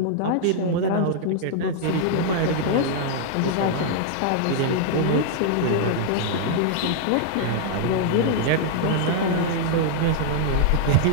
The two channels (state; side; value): different; both; correlation -0.01